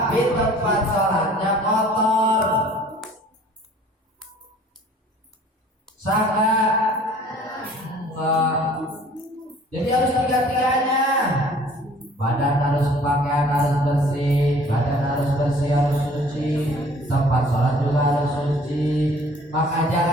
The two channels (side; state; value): both; normal; correlation 0.52